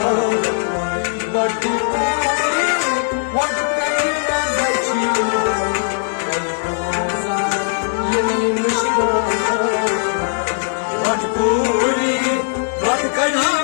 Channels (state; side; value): silent; right; digital silence